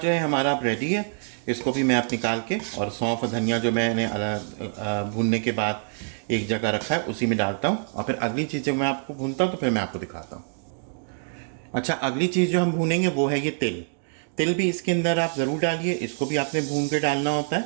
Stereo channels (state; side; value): silent; left; digital silence